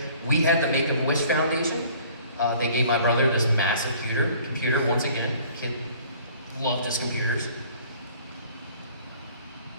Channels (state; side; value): inverted; both; correlation -0.53